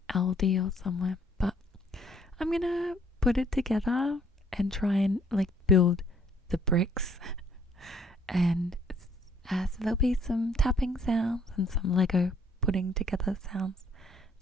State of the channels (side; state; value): both; normal; correlation 0.64